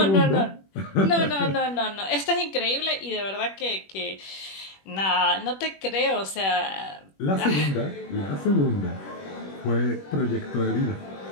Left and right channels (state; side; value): late; right; 21 ms